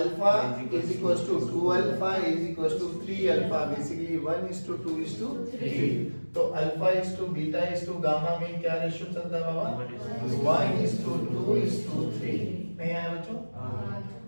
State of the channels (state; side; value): inverted; both; correlation -1.00